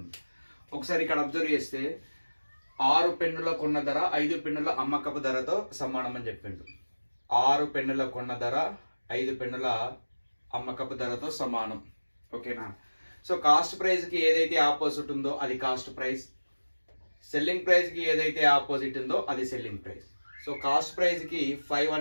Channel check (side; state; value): both; inverted; correlation -1.00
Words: ఒకసారి ఇక్కడ అబ్జర్వ్ చేస్తే 6 పెన్నుల కొన్న ధర 5 పెన్నుల అమ్మకపు ధరతో సమానం అని చెప్పిండు. 6 పెన్నుల కొన్న ధర 5 పెన్నుల అమ్మకపు ధరతో సమానం. ఓకేనా? సో కాస్ట్ ప్రైస్ కి ఏదైతే ఆపోజిట్ ఉందో అది కాస్ట్ ప్రైస్, సెల్లింగ్ ప్రైస్ కి ఏదైతే ఆపోజిట్ ఉందో అది selling price. So cost price కి 5